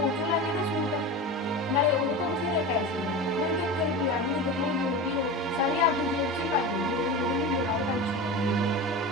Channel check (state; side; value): normal; both; correlation 0.28